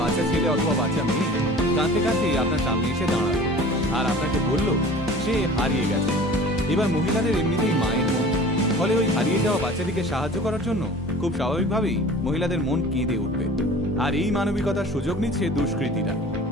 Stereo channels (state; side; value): normal; both; correlation 0.43